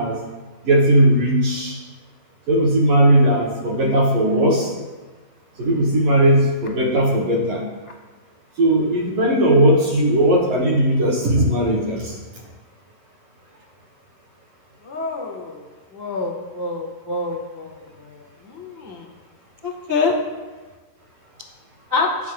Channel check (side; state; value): left; late; 11 ms